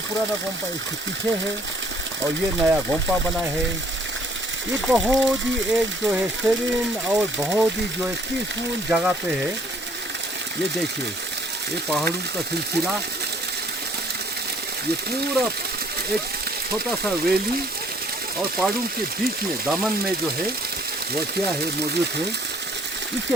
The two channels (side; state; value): both; normal; correlation 0.61